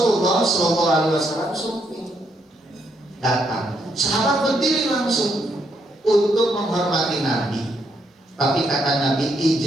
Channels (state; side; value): normal; both; correlation 0.76